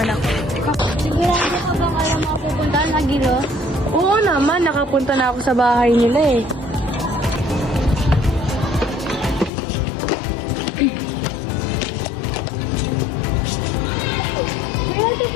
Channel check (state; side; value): drops out; right; at 9.5 s